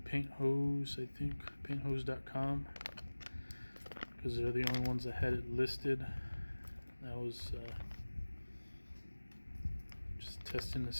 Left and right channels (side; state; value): both; inverted; correlation -1.00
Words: Hose, I think, painthose.com, because they're the only ones that had it listed. That was just testing to